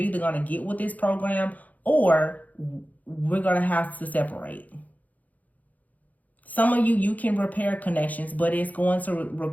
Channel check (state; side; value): late; right; 0.078 ms